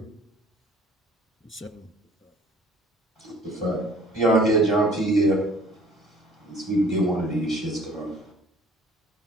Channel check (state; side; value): normal; both; correlation 0.53